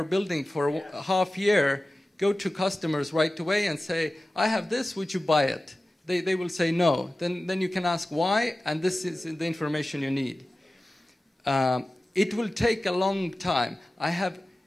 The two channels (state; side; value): normal; both; correlation 0.96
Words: building for a half year. Go to customers right away and say, I have this, would you buy it? They will say no. Then you can ask why, and this is the information you need. It will take a long time.